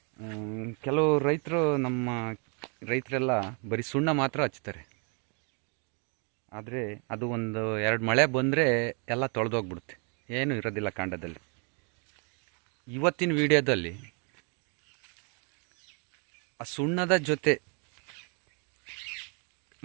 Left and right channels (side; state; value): left; quieter; 37.0 dB